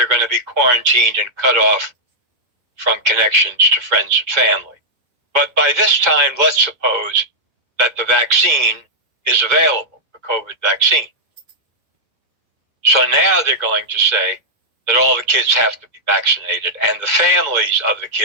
going to be quarantined and cut off from connections to friends and family. But by this time, let's suppose that the vaccine is available, the COVID vaccine. So now they're going to say that all the kids have to be vaccinated and the families of the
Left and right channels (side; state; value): left; late; 2.1 ms